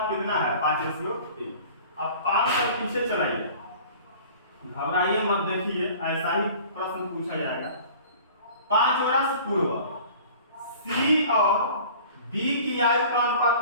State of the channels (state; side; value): inverted; both; correlation -0.45